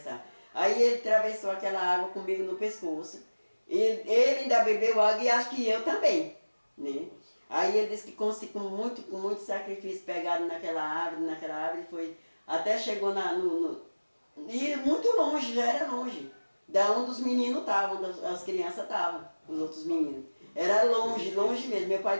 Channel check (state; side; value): inverted; both; correlation -1.00